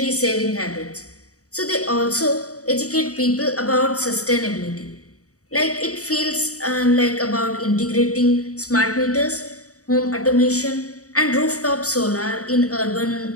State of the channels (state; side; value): late; right; 0.66 ms